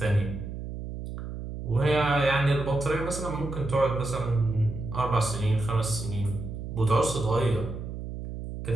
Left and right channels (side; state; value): right; noise; hum, 8 dB below the sound